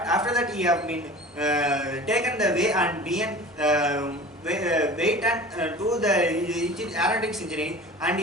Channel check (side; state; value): both; normal; correlation 0.39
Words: after that he have been taken the way and been wait and do the aeronautics engineering, and